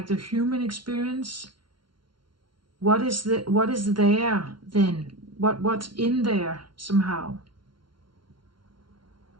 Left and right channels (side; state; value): left; late; 0.73 ms